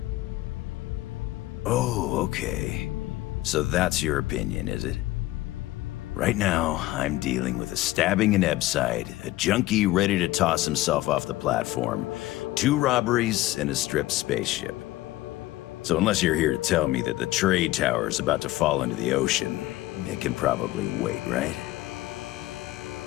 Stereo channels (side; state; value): right; quieter; 17.2 dB